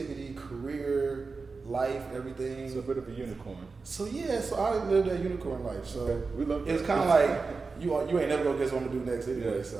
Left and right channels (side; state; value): left; quieter; 4.3 dB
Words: career, life, everything. It's a bit of a unicorn. So I lived that unicorn life. So it was kind of like you ain't never gonna guess what I'm gonna do next anyway.